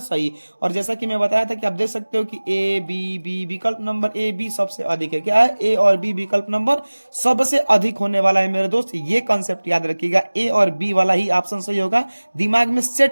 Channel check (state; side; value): inverted; both; correlation -1.00